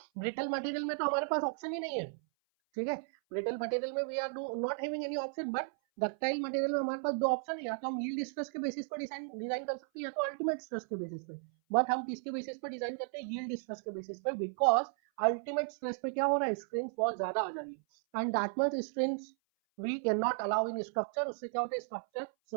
brittle material में तो हमारे पास ऑप्शन ही नहीं है। ठीक है, ब्रिटल मटेरियल में we are not having any option, but ductile material में हमारे पास दो ऑप्शन है, या तो हम यील्ड स्ट्रेस के बेसिस पर डिजाइन कर सकते हैं, या तो अल्टीमेट स्ट्रेस के बेसिस पे। बट हम किसके बेसिस पर डिजाइन करते हैं? यील्ड स्ट्रेस के बेसिस पे, बिकॉज अल्टीमेट स्ट्रेस पे क्या हो रहा है, स्ट्रेन बहुत ज्यादा आ जा रही है, and that much strain we can not allow in structure. उससे क्या होता है, स्ट्रक्चर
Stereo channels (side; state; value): left; silent; 55 dB below the other